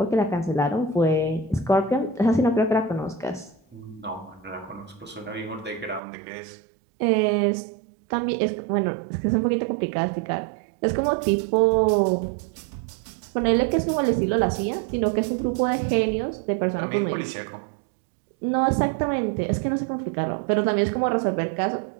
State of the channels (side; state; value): left; drops out; at 6.0 s